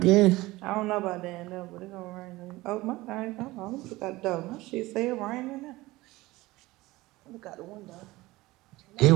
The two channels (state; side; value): quieter; left; 19.5 dB